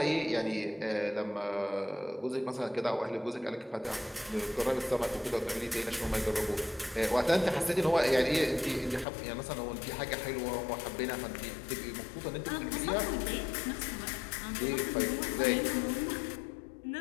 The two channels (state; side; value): drops out; right; at 9.1 s